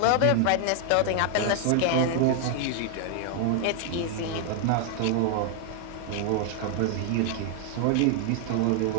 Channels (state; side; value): different; both; correlation 0.00